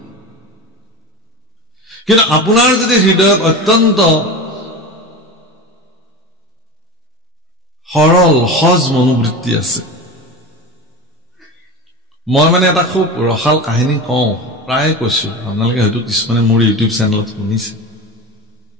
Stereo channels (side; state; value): both; normal; correlation 0.28